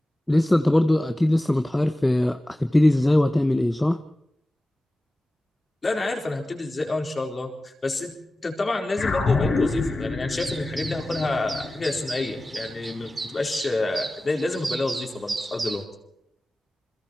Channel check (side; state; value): both; normal; correlation 0.96